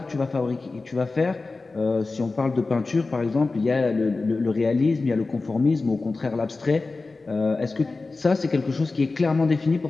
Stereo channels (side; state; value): right; quieter; 3.6 dB